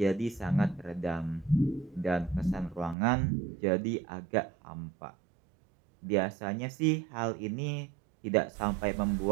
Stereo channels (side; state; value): left; drops out; at 3.0 s